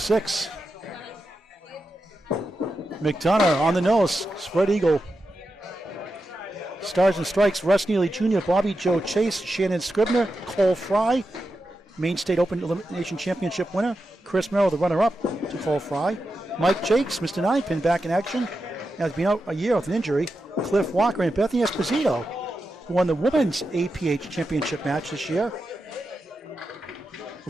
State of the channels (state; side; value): normal; both; correlation 0.89